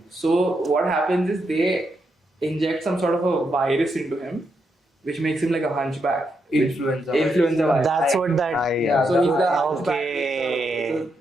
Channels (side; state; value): both; normal; correlation 0.81